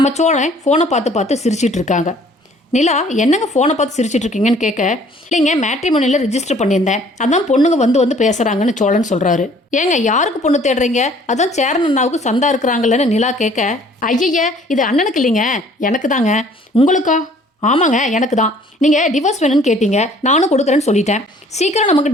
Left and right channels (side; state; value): both; normal; correlation 0.56